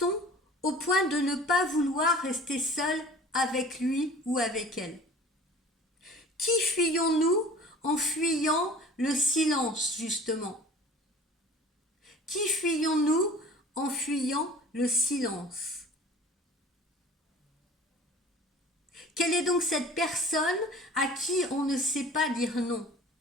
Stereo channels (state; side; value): normal; both; correlation 0.44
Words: au point de ne pas vouloir rester seul avec lui ou avec elle? Qui fuyons-nous en fuyant le silence, justement? Qui fuyons-nous en fuyant le silence? Quelle est donc cette personne à qui on ne sait pas dire non?